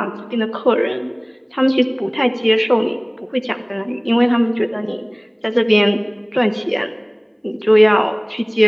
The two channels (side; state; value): both; identical; correlation 1.00